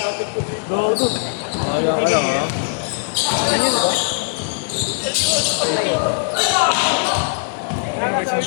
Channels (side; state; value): right; silent; digital silence